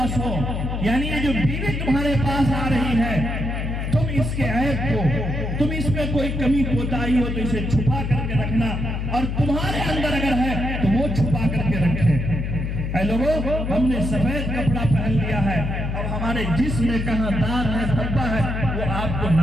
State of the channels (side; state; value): left; noise; hum, 3 dB below the sound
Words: ہو، یعنی یہ جو بیوی تمہارے پاس آ رہی ہے، تم اس کے عیب کو، تم اس میں کوئی کمی کوتاہی ہو تو اسے چھپا کر کے رکھنا، اور تمہارے اندر اگر ہے تو وہ چھپا کر کے رکھے۔ اے لوگوں، ہم نے سفید کپڑا پہن لیا ہے، اب ہمارے جسم میں کہاں داغ ہے، دھبا ہے، وہ آپ کو